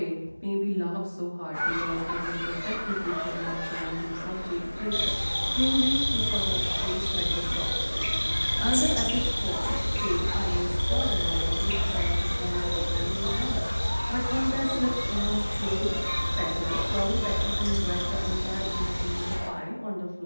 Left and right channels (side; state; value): both; inverted; correlation -1.00